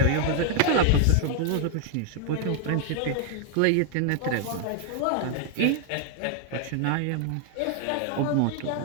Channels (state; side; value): different; both; correlation 0.00